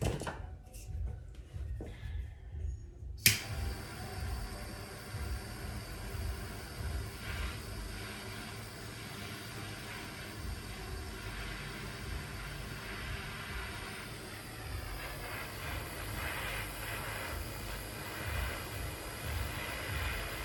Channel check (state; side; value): identical; both; correlation 1.00